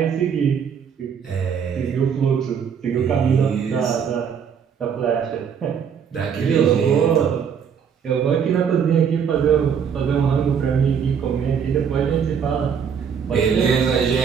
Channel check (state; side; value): quieter; left; 7.3 dB